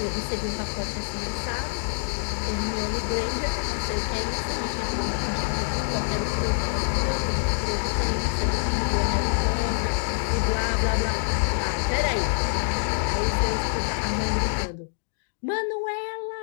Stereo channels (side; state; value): right; silent; digital silence